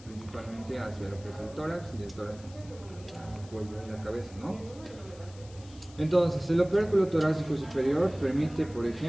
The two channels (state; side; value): noise; left; hiss, 22 dB below the sound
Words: principalmente hacia lo que es el tórax y del tórax hacia el cuello y la cabeza, ¿no? Entonces, el opérculo torácico superior permite, por